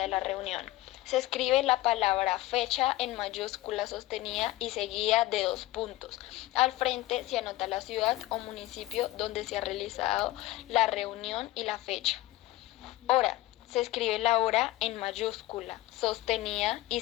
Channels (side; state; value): right; quieter; 17.2 dB